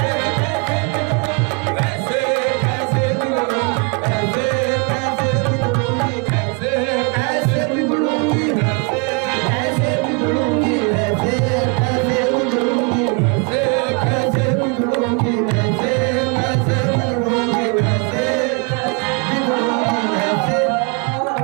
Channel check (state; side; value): quieter; left; 33.5 dB